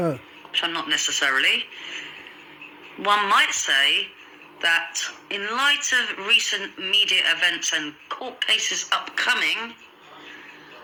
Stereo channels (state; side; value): identical; both; correlation 1.00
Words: which I'm not necessarily, one might say that in light of recent media events and court cases upcoming,